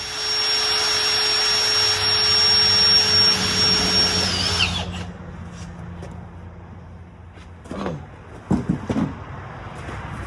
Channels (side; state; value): both; identical; correlation 1.00